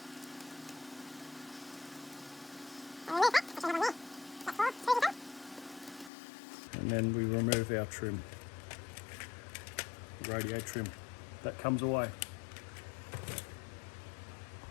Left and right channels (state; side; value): drops out; right; at 6.1 s